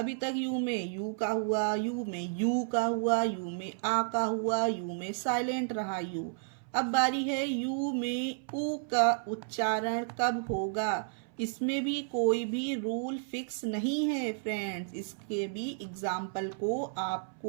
तक यू में यू का हुआ, यू में यू का हुआ, यू में आ का हुआ, यू में साइलेंट रहा यू। अब बारी है यू में ऊ का उच्चारण कब होगा। इसमें भी कोई भी रूल फिक्स नहीं है फ्रेंड्स, इसके भी एग्जाम्पल को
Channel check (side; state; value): left; silent; 56 dB below the other